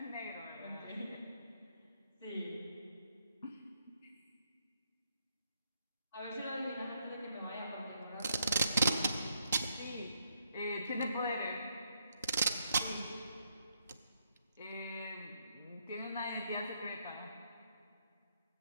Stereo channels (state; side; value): inverted; both; correlation -0.75